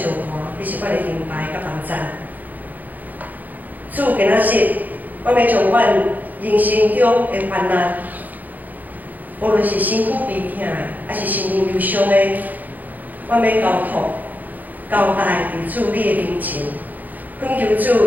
援，你是阮的灵牌甲帮助。主今仔日，阮要将阮人生中的患难，无论是身躯悲痛的，还是心灵忧伤的，阮要交托、交代伫主你的面前，恳求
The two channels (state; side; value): late; left; 0.083 ms